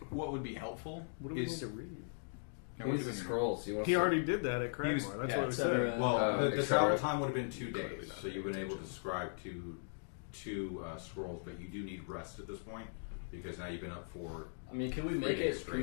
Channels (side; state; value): right; silent; digital silence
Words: what would be helpful What do we need is... to read? No, He we're needs the doing- scrolls. You want He already did that at Cragmore. was- That's yeah, what we etc. said. Well, the etc. travel time would have been 2 Clearly days, not. so you've been able to subscribe to 2 scrolls, but you do need rest at this point because now you've been up for. I mean, can we 3 make days it? Can we